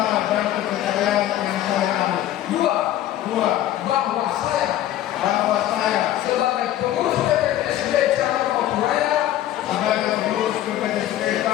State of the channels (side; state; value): right; quieter; 13.0 dB